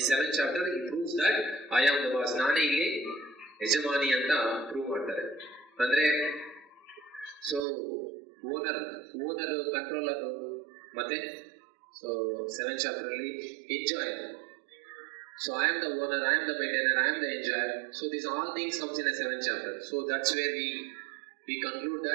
7th chapter, he proves that I am the boss. Nane illi yajamani anta prove ಮಾಡ್ತಾರೆ. ಅಂದ್ರೆ owner controller ಮತ್ತೆ 7th chapter ಅಲ್ಲಿ enjoyer. So I am the owner, I am the maintainer, I am the enjoyer. So these all things comes in the 7th chapter. So that's where we conclude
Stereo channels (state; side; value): drops out; left; at 7.7 s